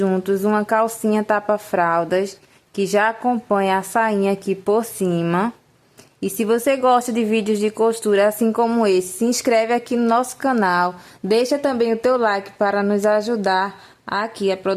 uma calcinha tapa-fraldas que já acompanha a sainha aqui por cima. E se você gosta de vídeos de costura assim como esse, se inscreve aqui no nosso canal, deixa também o teu like para nos ajudar aqui a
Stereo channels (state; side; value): identical; both; correlation 1.00